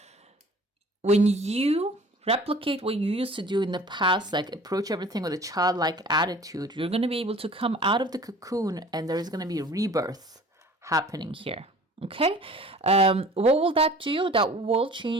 when you replicate what you used to do in the past, like approach everything with a childlike attitude, you're going to be able to come out of the cocoon and there is going to be a rebirth happening here. Okay, what will that do? That will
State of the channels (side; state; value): both; normal; correlation 0.46